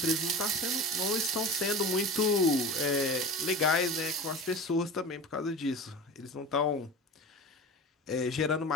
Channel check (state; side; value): normal; both; correlation 0.32